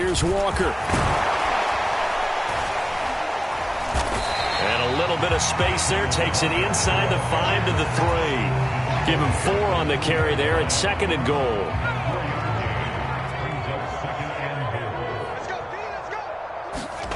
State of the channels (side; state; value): both; identical; correlation 1.00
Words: Walker. And a little bit of space there, takes it inside the 5 to the 3. Give him 4 on the carry there at 2nd and goal.